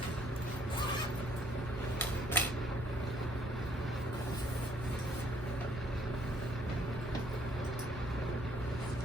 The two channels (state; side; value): normal; both; correlation 0.64